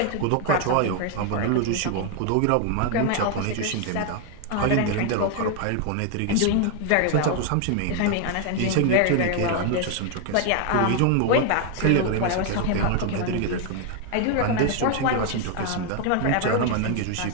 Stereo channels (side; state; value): both; different; correlation 0.01